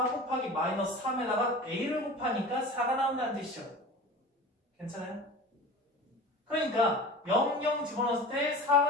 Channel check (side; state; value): both; normal; correlation 0.36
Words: 곱하기 마이너스 3에다가 a를 곱하니까 4가 나온다는 뜻이죠. 괜찮아요? 그러니까 0, 0 집어넣었을 때